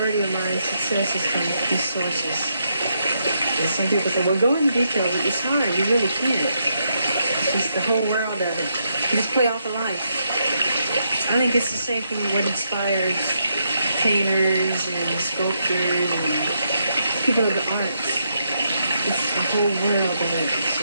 of my success is from these sources. And some people say, well, go into detail, but it's hard. You really can't. It's just the whole world of it. You just play off of life. I think it's the same thing with what inspires painters and sculptors and people of the arts. It's the whole world of it. It's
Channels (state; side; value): inverted; both; correlation -0.79